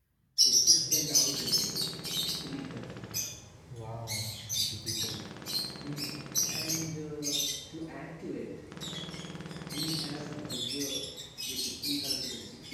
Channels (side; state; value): both; identical; correlation 1.00